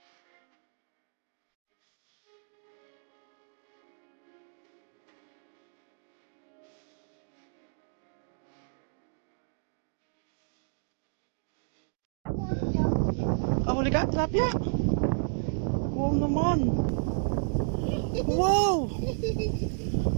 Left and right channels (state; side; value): silent; left; digital silence